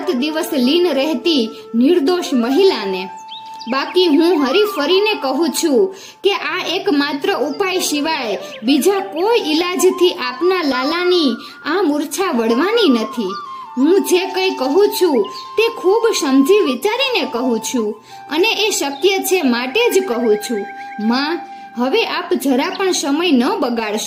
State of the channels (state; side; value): identical; both; correlation 1.00